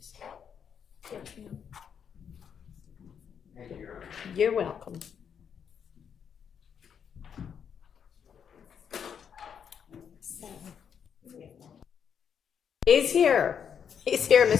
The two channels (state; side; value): quieter; right; 7.6 dB